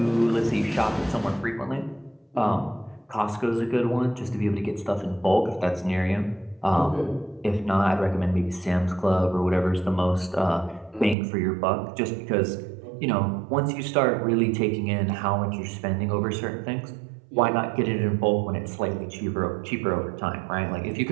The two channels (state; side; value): drops out; left; at 11.2 s